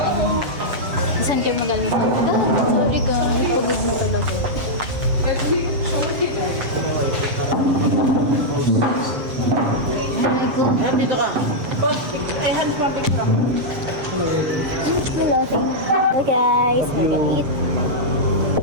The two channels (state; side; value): late; left; 7.2 ms